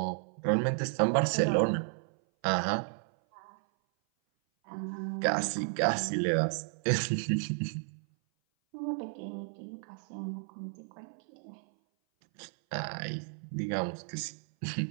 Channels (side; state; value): left; silent; 56 dB below the other